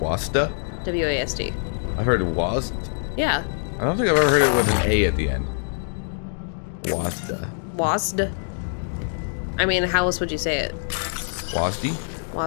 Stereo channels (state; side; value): silent; right; digital silence